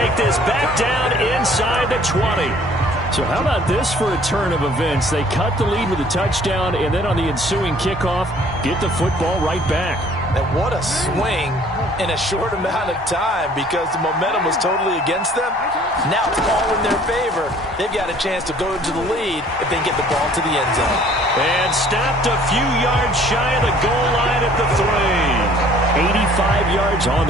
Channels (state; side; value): normal; both; correlation 0.55